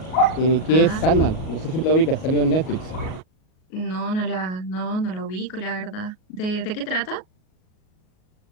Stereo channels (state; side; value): late; right; 38 ms